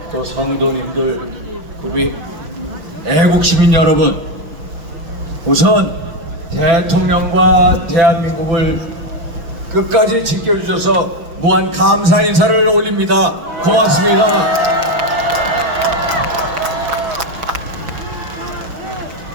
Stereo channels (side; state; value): left; late; 6.0 ms